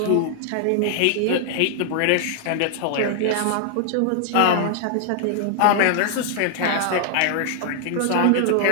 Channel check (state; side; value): different; both; correlation 0.00